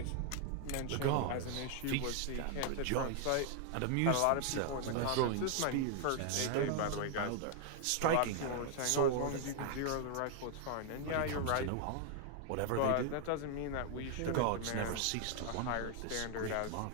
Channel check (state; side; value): different; both; correlation 0.00